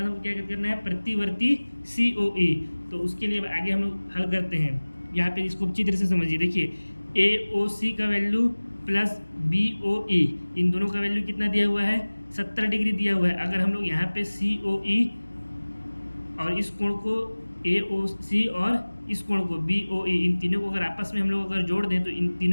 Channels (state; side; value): inverted; both; correlation -1.00